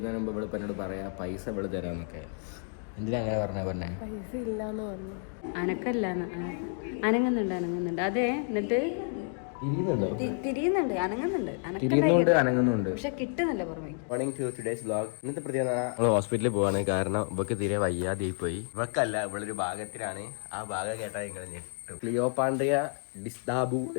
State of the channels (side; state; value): right; silent; 58 dB below the other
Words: മുമ്പ് ഇവിടെ എന്നോട് പറയാം പൈസ ഇവിടെ തരാമെന്നൊക്കെ. എന്തിനാ അങ്ങനെ പറഞ്ഞേ? പൈസ ഇല്ലാന്ന് പറഞ്ഞു. അനങ്ങുന്നുണ്ട്. അതെ, എന്നിട്ട് തിരിയുന്നുണ്ട്, അനങ്ങുന്നുണ്ട്, പക്ഷെ കിട്ടുന്നില്ല പുറമേ. Morning to today's vlog. ഇന്നത്തെ പ്രത്യേകത നമ്മൾ ഹോസ്പിറ്റലിൽ പോവാണ്. കാരണം ഇവക്ക് തീരെ വയ്യാതെ പോയി. ഇവക്കല്ല, ഇവളൊരു ഭാഗത്തിലാണ്. ആ ഭാഗം കേട്ടാൽ നിങ്ങൾ ഞെട്ടും. ക്ലിയോപാൻഡ്രിയ ഡിസ്ഡാബു